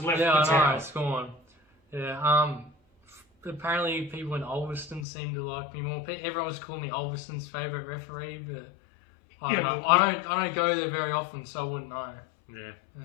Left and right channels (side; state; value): right; drops out; at 5.1 s